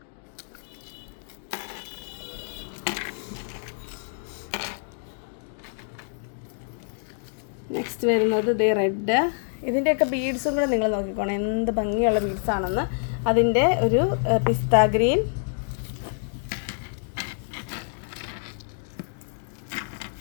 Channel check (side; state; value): right; silent; digital silence